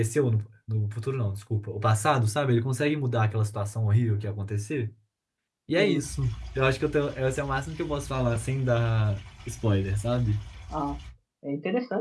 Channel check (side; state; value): both; identical; correlation 1.00